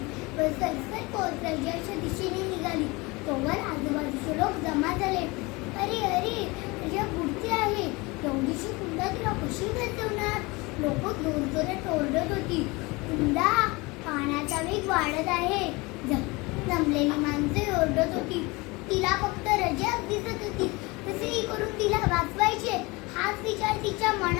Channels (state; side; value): quieter; right; 24.5 dB